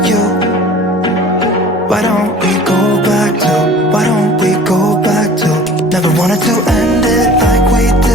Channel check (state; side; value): normal; both; correlation 0.45